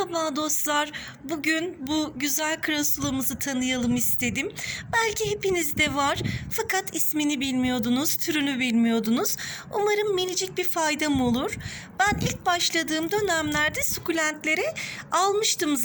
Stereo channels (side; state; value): both; identical; correlation 1.00